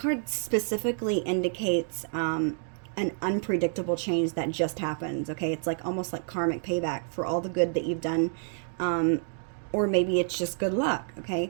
specifically indicates an unpredictable change that just happens, okay? It's like almost like karmic payback for all the good that you've done, or maybe it's just good luck,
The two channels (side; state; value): left; silent; 59 dB below the other